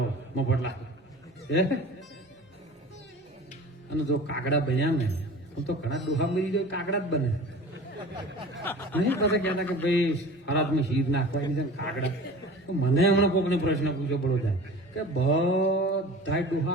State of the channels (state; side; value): normal; both; correlation 0.40